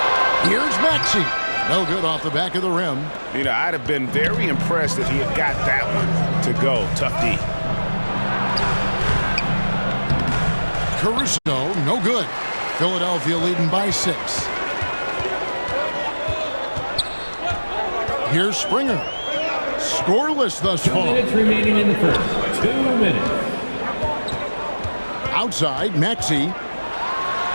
Here's Maxey. No good off the back of the rim. You know, I'd have been very impressed if he had got that one to go. Tough D. Caruso, no good. Philadelphia leading by 6. Here's Springer. Scoreless thus far. 2 minutes remaining in the first. 2 minutes. Outside, Maxey.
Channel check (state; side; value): inverted; both; correlation -1.00